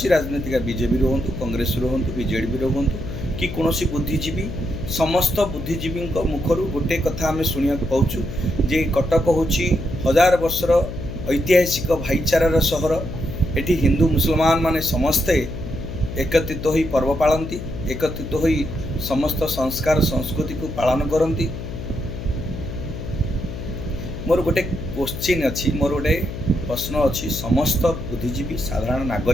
राजनीतिक बीजेपी हूँ, कांग्रेस हूँ, बीजेडी हूँ कि कौन बुद्धिजीवी, समस्त बुद्धिजीवी मुखर गोटे कथा आम शुणा पाचु जे कटक हूँ हजार वर्षर ऐतिहासिक भाईचारार सहर। एटी हिंदू मुसलमान माने समस्ते एकत्रित हो पर्व पालती, एकत्रित हो समस्त संस्कार संस्कृति को पालन करती। मोर गोटे क्वेश्चन अच्छी, मोर गोटे प्रश्न अच्छी, समस्त बुद्धिजीवी साधारण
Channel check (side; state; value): left; noise; hum, 8 dB below the sound